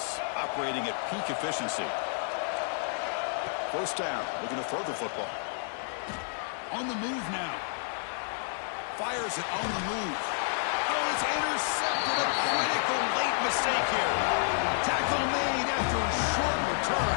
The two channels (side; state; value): right; silent; digital silence